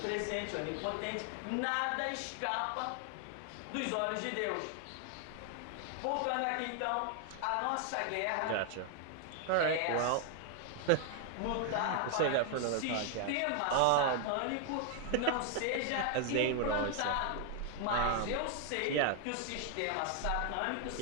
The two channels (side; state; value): both; different; correlation 0.00